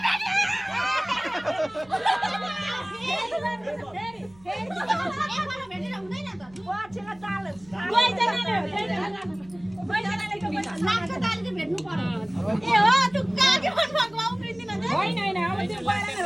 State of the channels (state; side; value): noise; right; hum, 26 dB below the sound